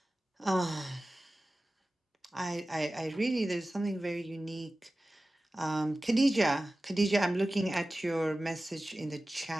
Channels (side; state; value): both; normal; correlation 0.96